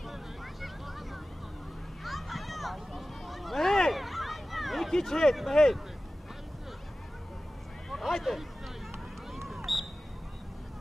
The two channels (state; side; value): normal; both; correlation 0.96